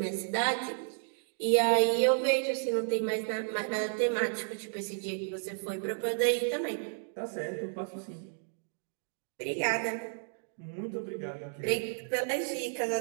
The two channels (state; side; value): silent; left; digital silence